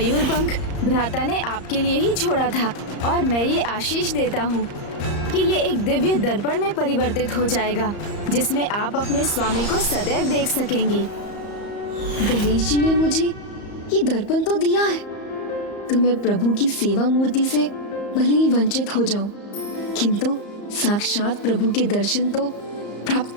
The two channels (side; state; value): right; late; 34 ms